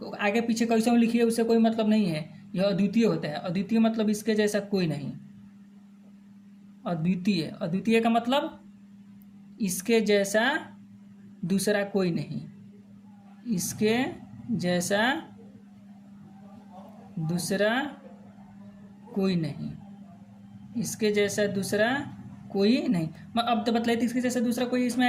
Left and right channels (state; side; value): identical; both; correlation 1.00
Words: आगे पीछे कैसे लिखिए उससे कोई मतलब नहीं है, यह अद्वितीय होता है। अद्वितीय मतलब इसके जैसा कोई नहीं। अद्वितीय का मतलब इसके जैसा दूसरा कोई नहीं, इसके जैसा दूसरा कोई नहीं, इसके जैसा दूसरा कोई नहीं। अब तो बतलाइए, इसके जैसा दूसरा कोई इसमें